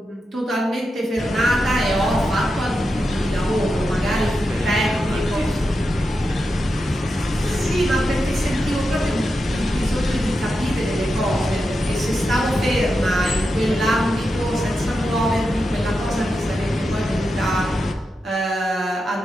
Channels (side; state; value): both; normal; correlation 0.88